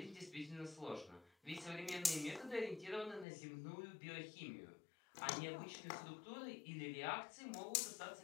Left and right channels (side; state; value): right; drops out; at 3.2 s